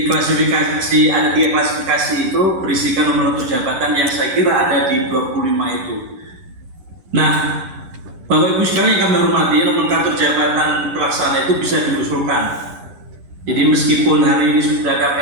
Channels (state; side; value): late; left; 11 ms